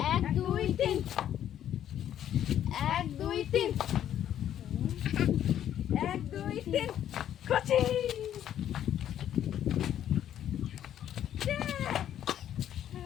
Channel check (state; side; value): quieter; right; 10.7 dB